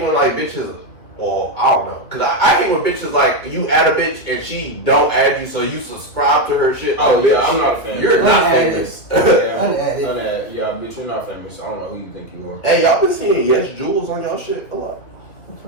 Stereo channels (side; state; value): right; late; 2.4 ms